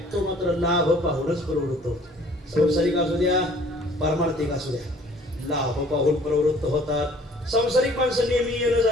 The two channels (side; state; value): both; normal; correlation 0.55